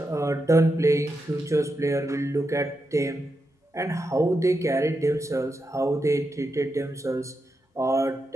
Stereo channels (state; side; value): normal; both; correlation 0.86